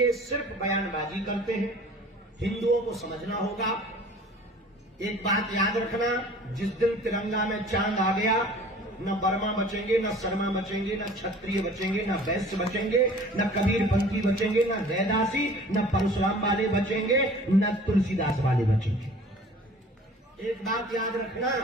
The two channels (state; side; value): normal; both; correlation 0.47